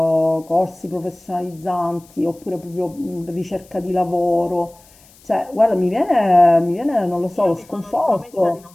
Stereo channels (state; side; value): noise; left; hiss, 27 dB below the sound